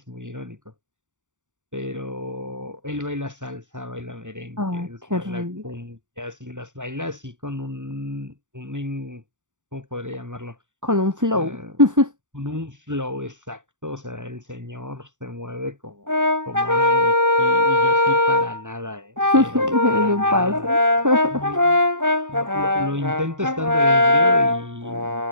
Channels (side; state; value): left; late; 0.86 ms